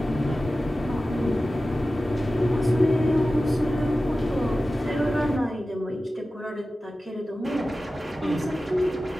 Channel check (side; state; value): both; normal; correlation 0.95